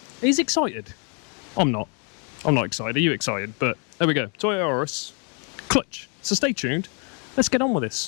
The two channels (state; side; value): quieter; right; 38.0 dB